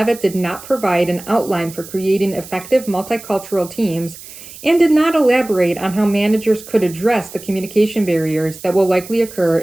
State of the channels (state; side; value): noise; right; hiss, 16 dB below the sound